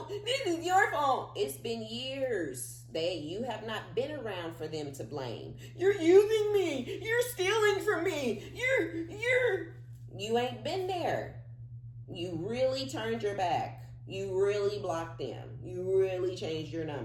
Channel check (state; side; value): identical; both; correlation 1.00